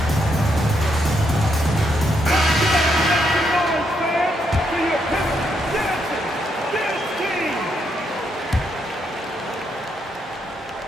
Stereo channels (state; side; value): normal; both; correlation 0.78